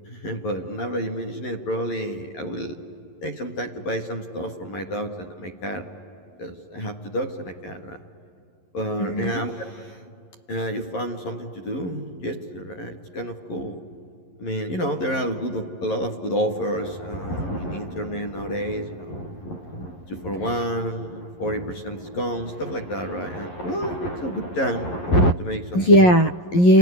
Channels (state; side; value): late; right; 11 ms